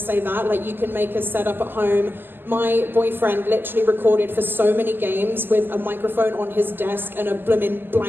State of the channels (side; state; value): left; late; 0.10 ms